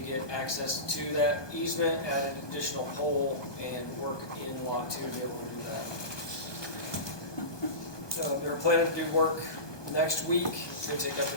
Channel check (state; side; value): late; right; 1.2 ms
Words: get access to that easement, add an additional pole, and work in Lot 2 to be able to do that. They're planning to do work next week. It's going to take up to